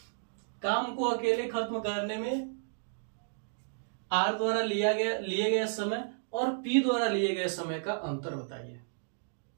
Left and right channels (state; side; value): silent; left; digital silence